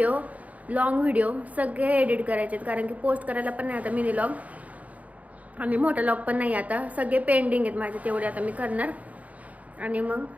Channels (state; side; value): late; left; 0.071 ms